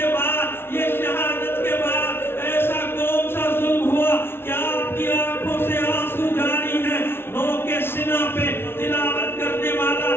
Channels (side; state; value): right; late; 0.11 ms